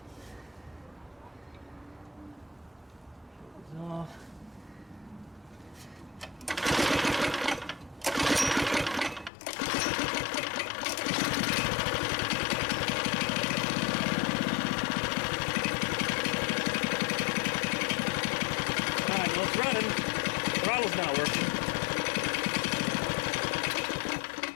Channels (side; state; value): right; drops out; at 9.3 s